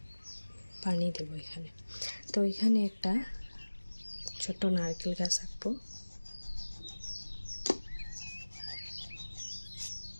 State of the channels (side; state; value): both; inverted; correlation -1.00